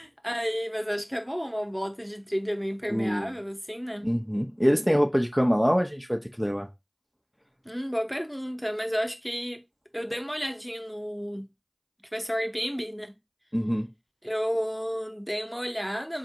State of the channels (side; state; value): both; identical; correlation 1.00